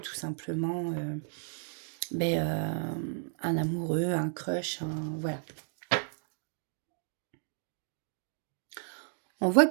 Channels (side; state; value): left; silent; digital silence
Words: simplement un amoureux, un crush, voilà. On voit